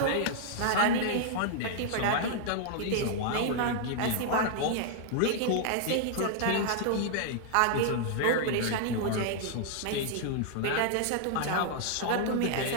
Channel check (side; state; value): both; different; correlation -0.01